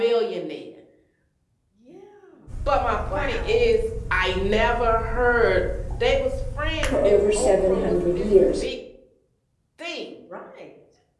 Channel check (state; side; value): identical; both; correlation 1.00